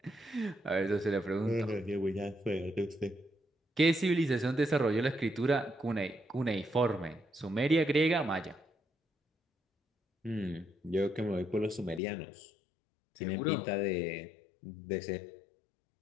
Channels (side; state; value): right; drops out; at 12.0 s